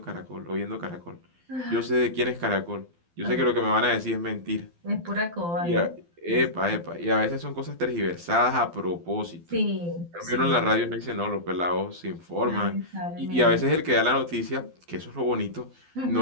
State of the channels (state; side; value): late; left; 12 ms